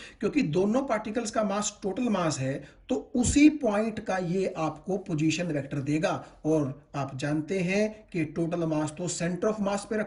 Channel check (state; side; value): identical; both; correlation 1.00